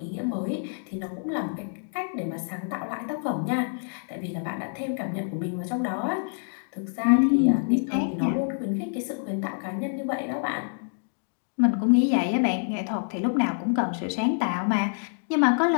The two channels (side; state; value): right; silent; digital silence